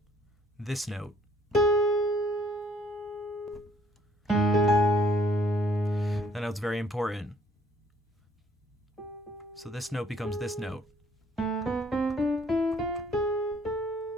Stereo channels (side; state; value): both; normal; correlation 0.61